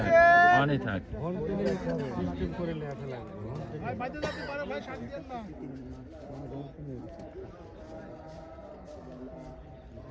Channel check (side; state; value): both; identical; correlation 1.00